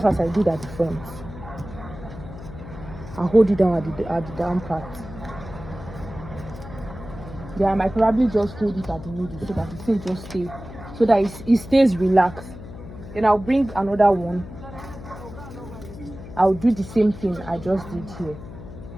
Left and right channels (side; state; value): left; noise; hum, 14 dB below the sound